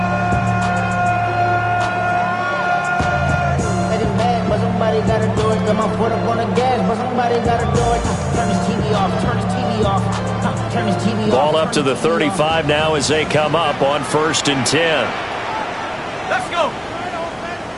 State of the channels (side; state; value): both; identical; correlation 1.00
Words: Ball up to the 35 now as they come up on 1st and 10. Let's go.